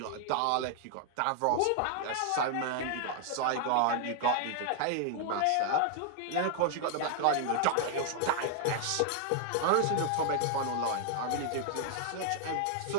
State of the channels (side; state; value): both; different; correlation 0.00